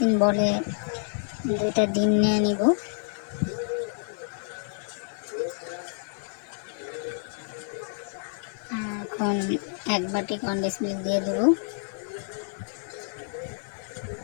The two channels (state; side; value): silent; right; 57 dB below the other